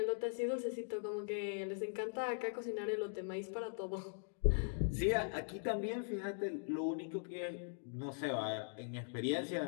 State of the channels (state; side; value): silent; right; digital silence